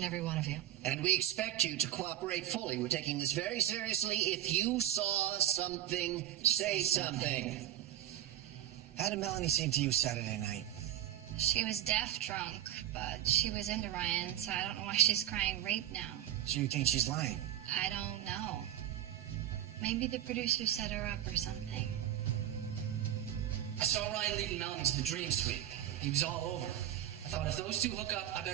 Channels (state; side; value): quieter; left; 12.2 dB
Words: every one of you. And we expect you to cooperate fully. We're taking this very seriously. If you saw something, say something. How did Melanie seem to you Saturday night? She was deaf drunk, but she was into Ryan, so I don't know why she's crying rape now. So you think she's lying? I don't know. Maybe the producer set her up or something. I saw Ryan leading Melanie to the dream suite. He was all over. I thought if those two hook up, I